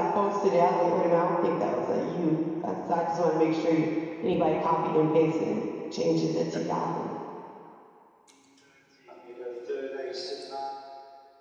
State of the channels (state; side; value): identical; both; correlation 1.00